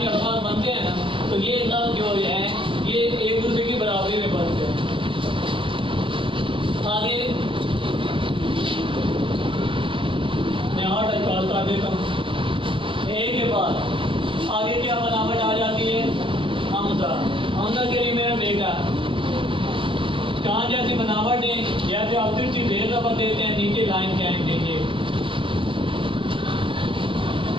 के अल्फाज बनते हैं ना तो ये लफ्ज़ जो है ये एक दूसरे की बराबरी में बनते हैं। आगे मैं 8 इस्काल कर देता हूँ। एक के बाद आगे क्या बनावट आ जाती है, हमजा। हमजा के लिए मेरा बेटा कहाँ जैसी बनावट है, जैसे आप तिरछी बेर रबर देते हैं, नीचे लाइन कैन देंगे।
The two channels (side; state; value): left; late; 0.25 ms